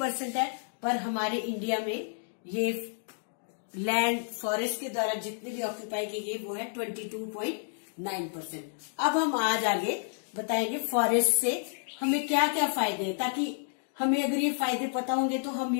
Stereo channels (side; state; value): right; silent; digital silence